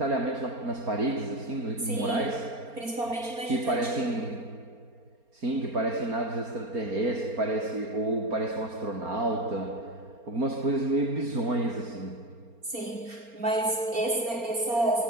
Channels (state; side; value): late; left; 4.3 ms